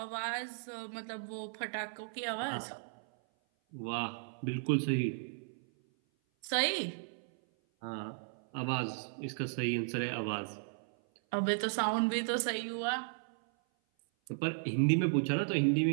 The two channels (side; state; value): left; silent; 54 dB below the other